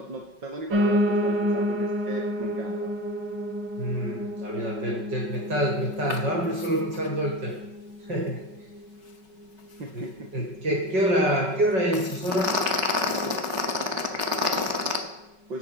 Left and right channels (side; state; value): left; late; 5.4 ms